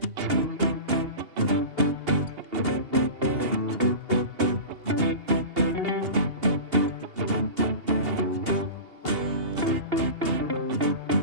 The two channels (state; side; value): late; left; 2.8 ms